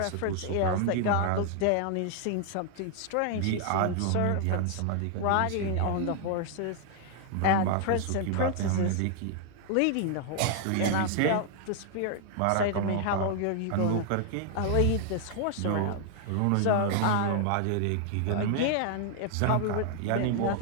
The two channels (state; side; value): different; both; correlation 0.00